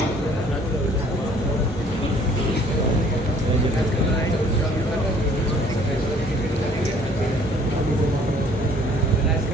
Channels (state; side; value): normal; both; correlation 0.57